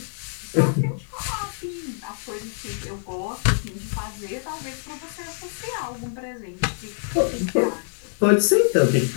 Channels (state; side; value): silent; right; digital silence